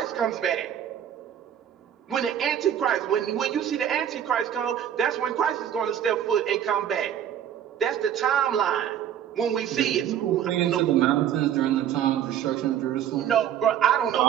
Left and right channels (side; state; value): left; quieter; 10.0 dB